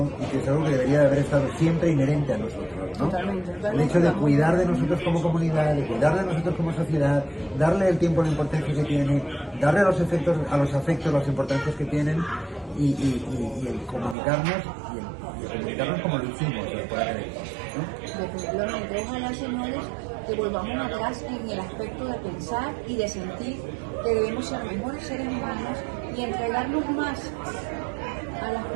y que es algo que debería de haber estado siempre inherente a nosotros, ¿no? Totalmente. El hecho de cuidar de nosotros como comunidad, de cuidar de nosotros como sociedad, darle el tiempo, la importancia que tiene, darle a los afectos las importancias que tienen, y el comunicarnos y el comunicarnos como lo hicimos por aquel entonces, ¿no? Definitivamente, ojalá, señores, que volvamos atrás en el aspecto de pensar y de sentir que debemos ser mejores seres humanos y entregarnos más a las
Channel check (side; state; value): left; drops out; at 14.2 s